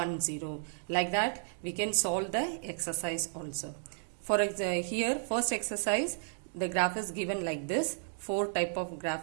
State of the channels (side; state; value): left; silent; digital silence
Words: 0. Like that we can solve the exercise also. For example, here first exercise, the graph is given like this. 4 type of